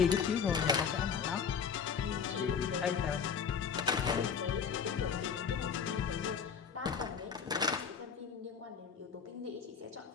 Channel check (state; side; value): quieter; right; 6.6 dB